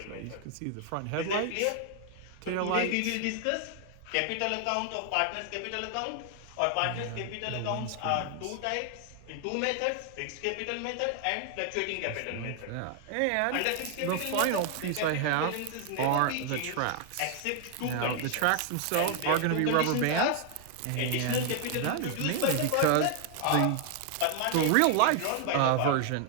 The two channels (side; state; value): both; different; correlation 0.00